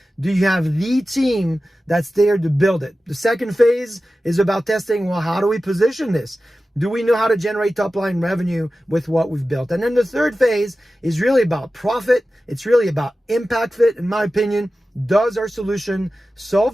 Do you have the team that's there to build it? The second phase is about testing, well, how do we position this? Do we know how to generate top-line revenue with what we've built? And then the third phase is really about profit. It's really about impact fit, in my opinion. Does our solution solve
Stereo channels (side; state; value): both; normal; correlation 0.94